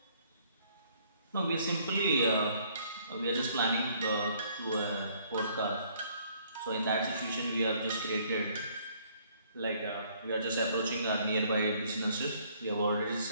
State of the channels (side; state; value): both; inverted; correlation -0.63